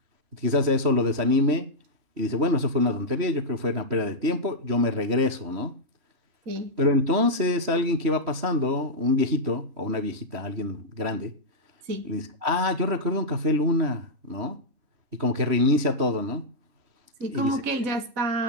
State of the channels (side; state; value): left; late; 3.1 ms